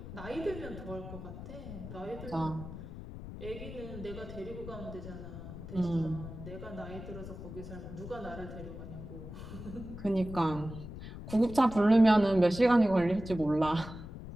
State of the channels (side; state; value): left; noise; rumble, 11 dB below the sound